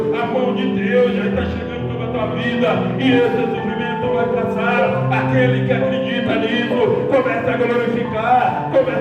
a mão de Deus já está chegando sobre a tua tua vida, e esse sofrimento vai passar. Aquele que acredita nisso, começa a glorificar,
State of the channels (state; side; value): identical; both; correlation 1.00